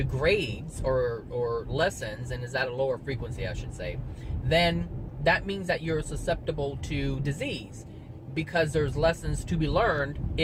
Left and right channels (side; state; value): both; identical; correlation 1.00